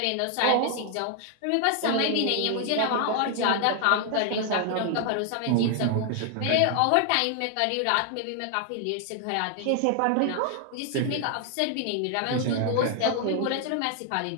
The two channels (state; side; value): different; both; correlation 0.00